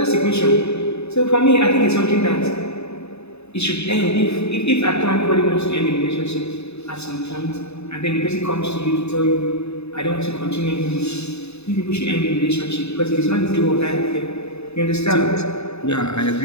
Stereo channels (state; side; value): late; right; 0.80 ms